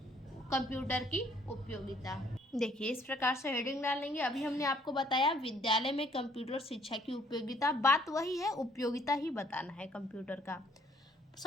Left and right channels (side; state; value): both; normal; correlation 0.63